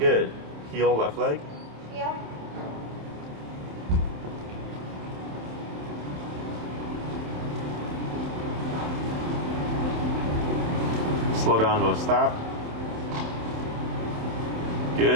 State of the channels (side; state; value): left; late; 27 ms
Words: Heel, left leg. Heel. Slow down to a stop.